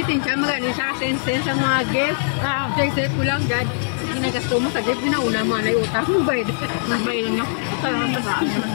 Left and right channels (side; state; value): right; silent; digital silence